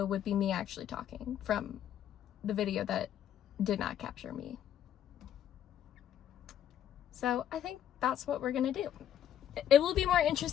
would be me actually talking from the video that did not capture me. So I think that's what we're gonna do. It will be more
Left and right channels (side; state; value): right; quieter; 10.3 dB